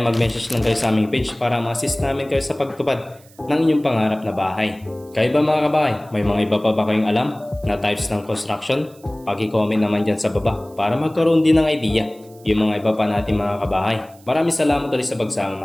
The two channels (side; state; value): right; noise; hiss, 27 dB below the sound